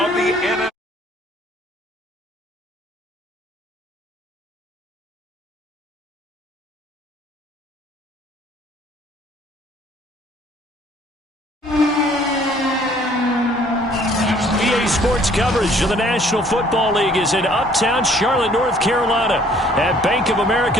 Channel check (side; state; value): both; normal; correlation 0.58